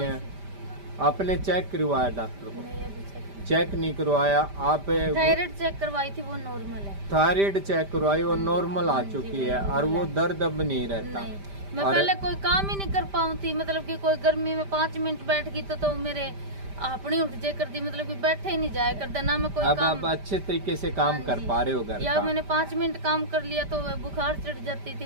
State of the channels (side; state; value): left; late; 5.1 ms